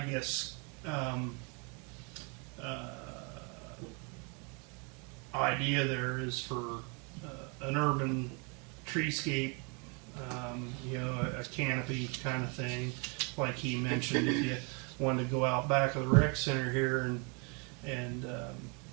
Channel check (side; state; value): left; quieter; 33.9 dB